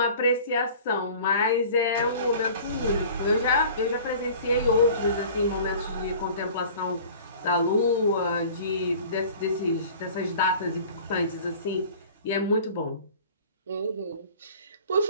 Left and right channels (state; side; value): inverted; both; correlation -0.44